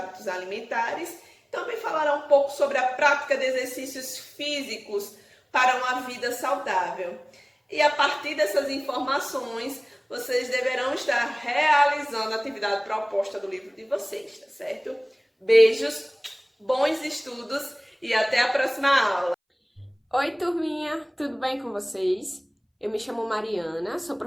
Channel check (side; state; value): both; identical; correlation 1.00